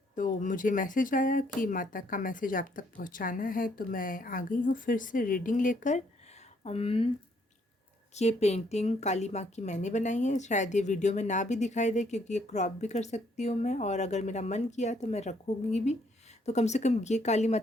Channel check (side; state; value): both; normal; correlation 0.69